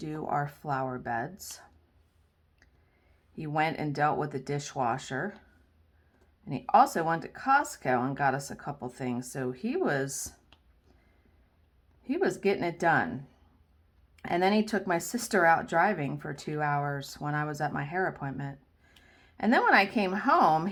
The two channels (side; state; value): both; identical; correlation 1.00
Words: our flower beds. He went and dealt with the dishwasher. And he also went to Costco and got us a couple things. So he was getting it done. And then he took my sister out driving for 2 hours when I was at my hair appointment. And then when I came home,